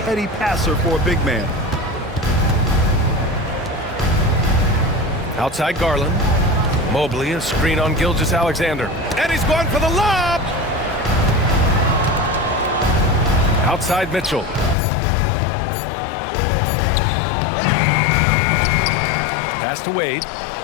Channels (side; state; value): right; drops out; at 14.8 s